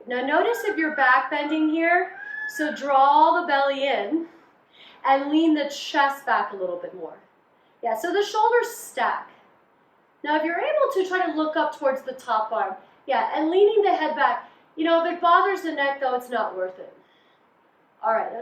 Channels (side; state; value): both; identical; correlation 1.00